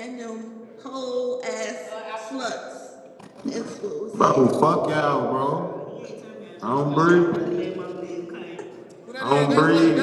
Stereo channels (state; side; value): identical; both; correlation 1.00